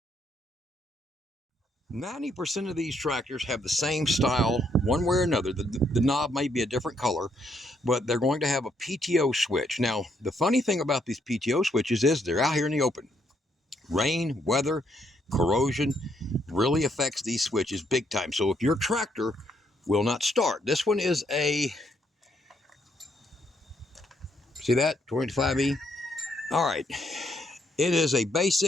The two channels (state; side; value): normal; both; correlation 0.73